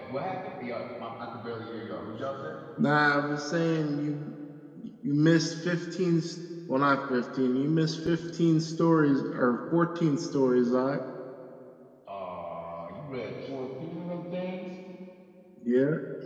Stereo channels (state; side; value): identical; both; correlation 1.00